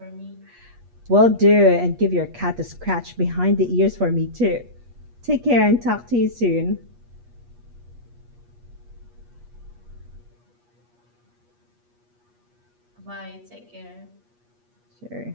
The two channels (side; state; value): left; late; 8.4 ms